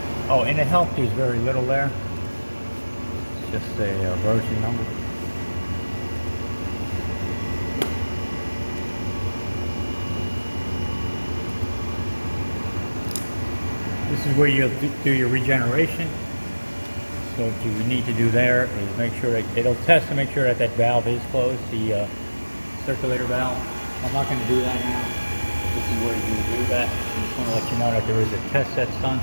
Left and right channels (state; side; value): inverted; both; correlation -1.00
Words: Oh, in the help, there's very little there. It's just a version number. This is where you'll do your regeneration. So what you need to do there is make sure that it'll test to make sure that that valve is closed, the circulator valve. I'm not going to do that now. This is where you do that. I just want to let you know that there is a test that's done.